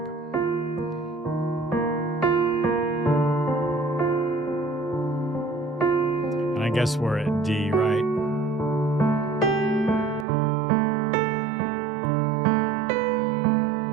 And I guess we're at D, right?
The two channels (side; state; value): left; drops out; at 10.2 s